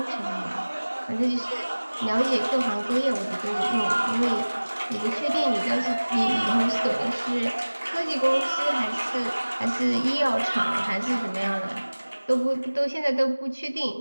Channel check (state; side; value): inverted; both; correlation -1.00